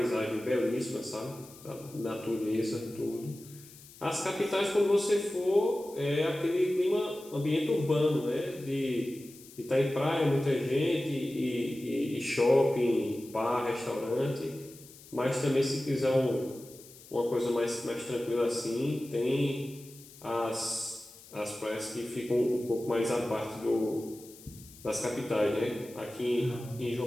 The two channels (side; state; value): left; noise; hiss, 20 dB below the sound